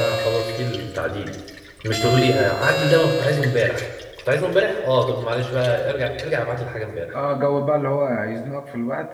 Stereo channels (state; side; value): identical; both; correlation 1.00